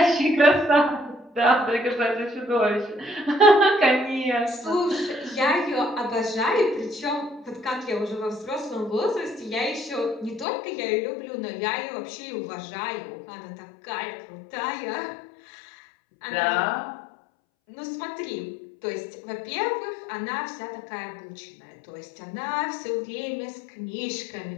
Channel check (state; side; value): drops out; right; at 10.5 s